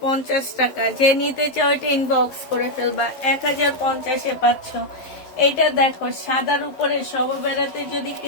টাকা। যে নিতে চাও এটা ইনবক্স করে ফেলবা। 1050-এ পাচ্ছ। এটা দেখো, সাদার উপরে সবে বেড়াতে যদি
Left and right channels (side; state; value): right; late; 11 ms